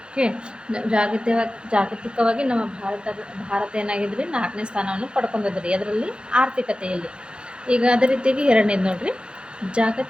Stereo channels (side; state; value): left; late; 0.052 ms